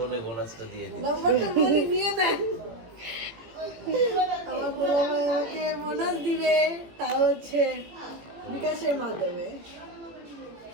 বোনাসটা দিয়ে দিই। নাম্বারটা বলে নিয়ে নেন। আমার বড় ভাই আমাকে বোনাস দিবে, তা হচ্ছে বিকাশের মাধ্যমে।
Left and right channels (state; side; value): late; left; 18 ms